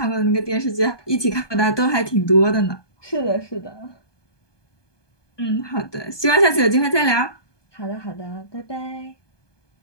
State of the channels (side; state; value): right; late; 1.2 ms